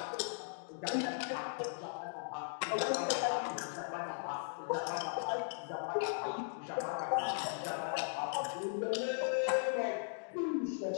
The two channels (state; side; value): silent; right; digital silence